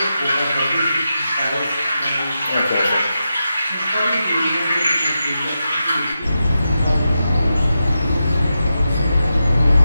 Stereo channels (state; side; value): inverted; both; correlation -0.89